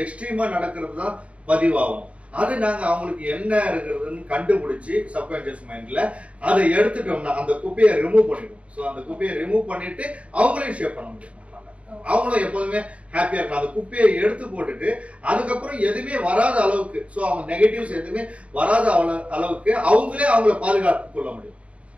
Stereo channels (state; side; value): late; left; 0.064 ms